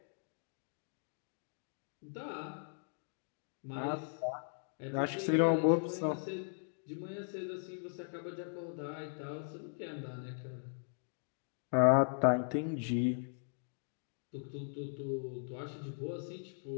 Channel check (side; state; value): right; silent; digital silence